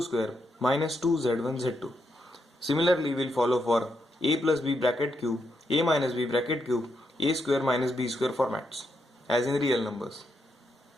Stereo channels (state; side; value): normal; both; correlation 0.81